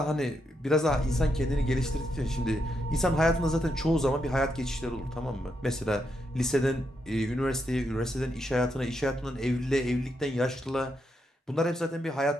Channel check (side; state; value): both; normal; correlation 0.81